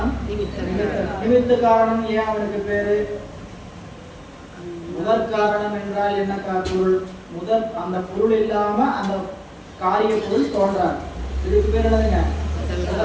நிமித்த காரணம். ஏன் அவனுக்கு பேரு? முதல் காரணம் என்றால் என்ன பொருள்? அந்த பொருள் இல்லாம அந்த காரிய பொருள் தோன்றாது. இதுக்கு பேர் என்னதுங்க?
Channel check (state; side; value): identical; both; correlation 1.00